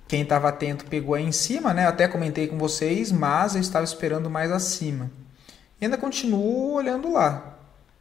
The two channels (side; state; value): right; quieter; 8.8 dB